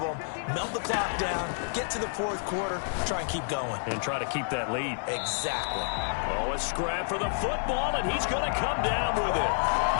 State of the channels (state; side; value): silent; right; 58 dB below the other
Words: melt the clock down, get to the fourth quarter, try and keep going. And try to keep that lead. Exactly. Oh, a scrap for the football, and he's going to come down with it.